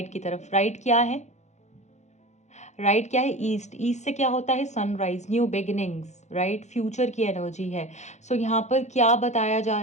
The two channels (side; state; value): right; late; 0.33 ms